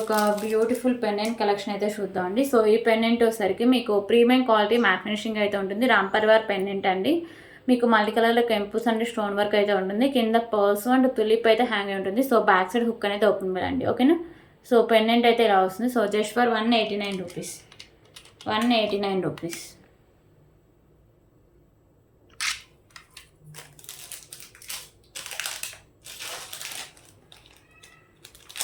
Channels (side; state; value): both; identical; correlation 1.00